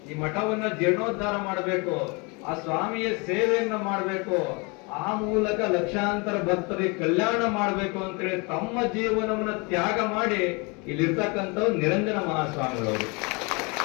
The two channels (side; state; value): right; quieter; 29.7 dB